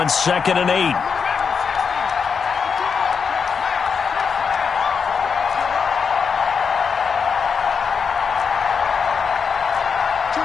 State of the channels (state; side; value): quieter; right; 6.0 dB